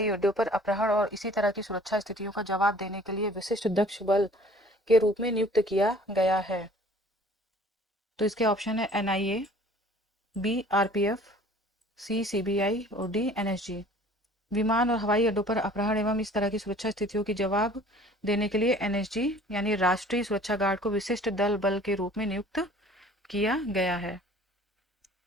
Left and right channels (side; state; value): both; normal; correlation 0.51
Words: अड्डों पर अपहरण और इसी तरह की सुरक्षा स्थितियों का जवाब देने के लिए विशिष्ट दक्ष बल के रूप में नियुक्त किया गया है? तो इसके ऑप्शन है एनआईए, बी आरपीएफ, सी सीबीआई और डी एनएसजी। विमान और हवाई अड्डों पर अपहरण एवं इस तरह की सुरक्षा स्थितियों की जवाब देने के लिए एनएसजी यानी राष्ट्रीय सुरक्षा गार्ड को विशिष्ट दल बल के रूप में नियुक्त किया गया है।